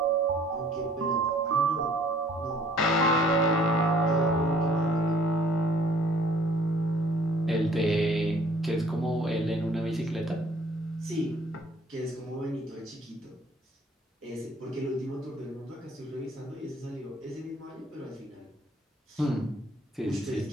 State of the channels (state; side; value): normal; both; correlation 0.57